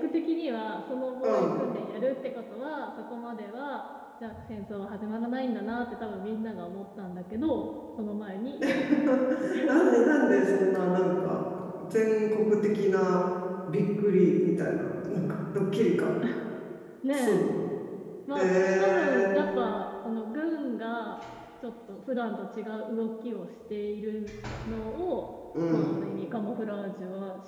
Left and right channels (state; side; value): identical; both; correlation 1.00